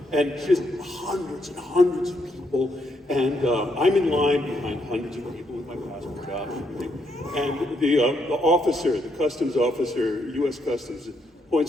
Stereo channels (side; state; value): both; normal; correlation 0.76